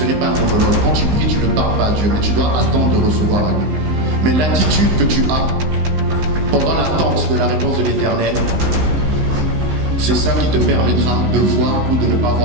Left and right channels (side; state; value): left; late; 19 ms